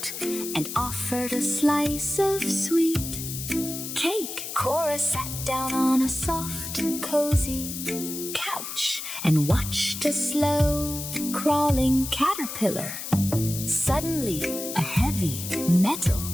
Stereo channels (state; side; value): noise; left; hiss, 7 dB below the sound